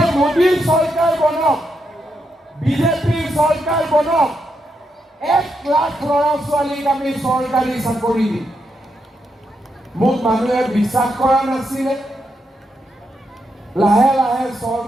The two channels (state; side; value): normal; both; correlation 0.82